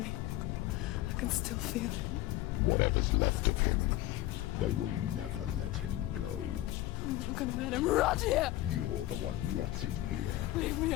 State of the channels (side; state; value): right; quieter; 15.8 dB